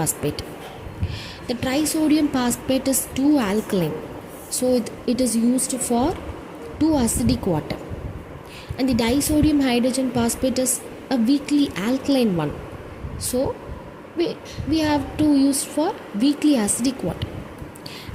The trisodium phosphate is too alkaline, so it is used for too acidic water, and the disodium hydrogen phosphate is a weakly alkaline one, so we have to use for weakly acidic water.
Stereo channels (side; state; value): both; identical; correlation 1.00